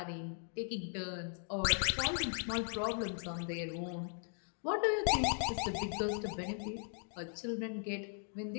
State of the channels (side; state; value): right; silent; 52 dB below the other